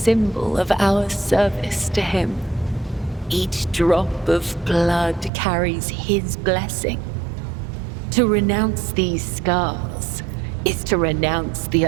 of our service to him. Each drop of blood carries his blessing. To renounce these scars is to renounce the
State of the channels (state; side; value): drops out; left; at 5.3 s